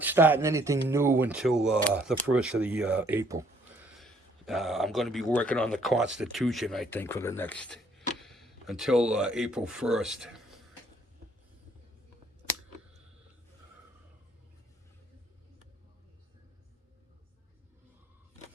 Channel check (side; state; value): both; normal; correlation 0.64